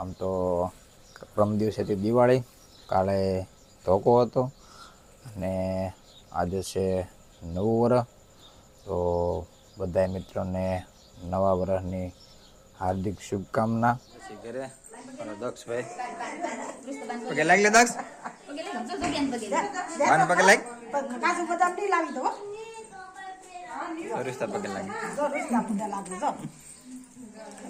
તો પ્રમ દિવસેથી દિવાળી, કાલે ધોકો હતો અને આજે છે નવું વર્ષ. તો બધા મિત્રોને નવા વર્ષની હાર્દિક શુભકામના. ઘરે દક્ષભાઈ પગે લાગ લે દક્ષ વાન પગે લાગ કાજુ બદામ ની લાવી દો સરિસ્તા પગે લાગ સરિસ્તા પગે લાગ જો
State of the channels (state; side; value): identical; both; correlation 1.00